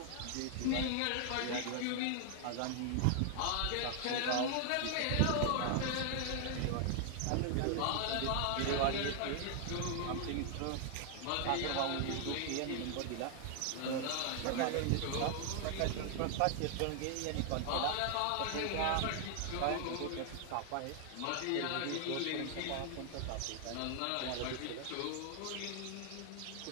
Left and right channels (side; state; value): both; different; correlation 0.00